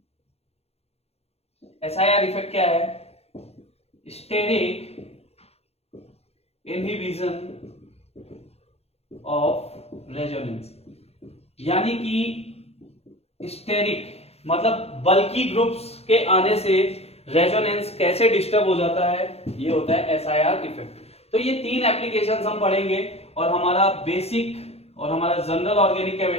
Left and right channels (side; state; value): right; late; 0.30 ms